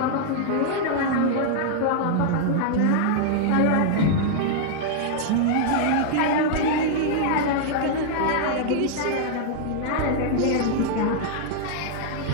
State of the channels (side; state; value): both; different; correlation -0.01